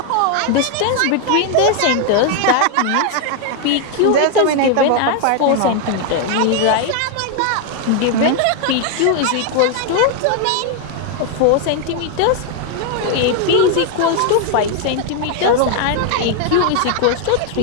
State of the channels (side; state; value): both; different; correlation 0.00